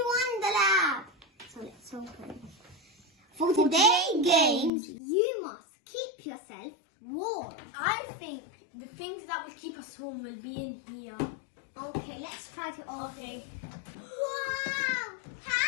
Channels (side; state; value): right; drops out; at 4.7 s